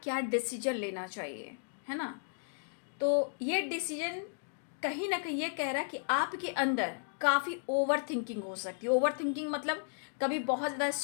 क्या डिसीजन लेना चाहिए, है ना। तो ये डिसीजन कहीं ना कहीं ये कह रहा है कि आपके अंदर काफ़ी ओवर थिंकिंग हो सकती है। ओवर थिंकिंग मतलब कभी बहुत ज़्यादा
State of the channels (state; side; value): silent; right; digital silence